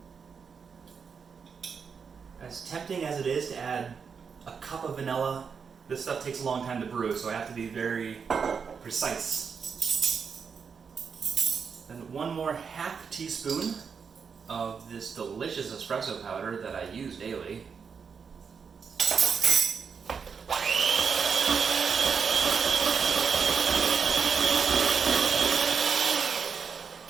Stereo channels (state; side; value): quieter; left; 6.1 dB